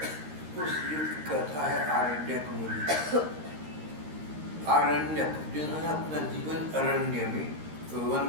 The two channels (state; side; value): late; left; 13 ms